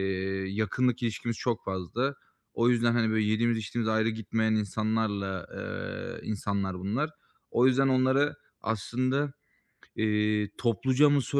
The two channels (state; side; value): identical; both; correlation 1.00